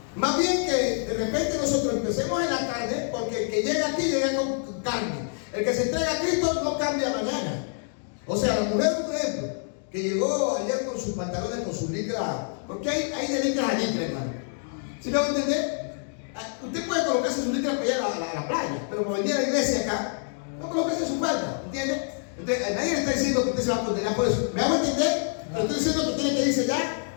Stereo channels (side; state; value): right; silent; 55 dB below the other